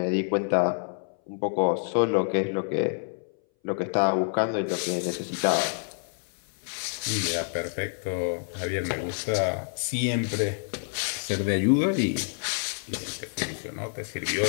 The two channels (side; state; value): right; silent; 59 dB below the other